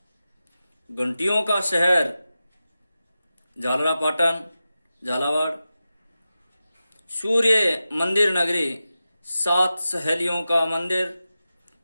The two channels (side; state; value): both; inverted; correlation -0.93